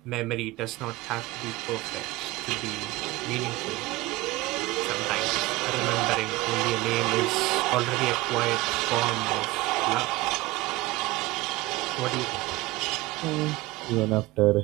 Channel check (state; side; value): quieter; left; 20.1 dB